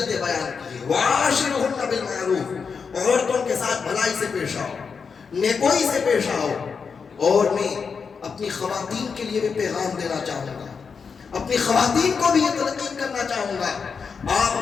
بیان کی، وَعَاشِرُهُنَّ بِالْمَعْرُوفِ، عورتوں کے ساتھ بھلائی سے پیش آؤ، نیکوئی سے پیش آؤ۔ اور میں اپنی خواتین کے لیے بھی پیغام دینا چاہوں گا، اپنی خواتین کو بھی یہ تلقین کرنا چاہوں گا، آپ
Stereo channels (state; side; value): quieter; right; 5.7 dB